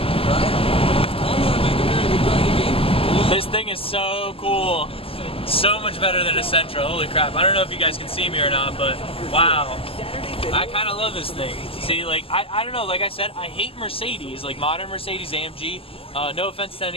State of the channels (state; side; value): late; right; 0.27 ms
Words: This thing is so cool. So much better than a Sentra, holy crap. I don't know if you guys can see me or not, but wow. I kind of love this thing. See, like, I don't know, like I said, I hate Mercedes, like modern Mercedes AMG. No offense to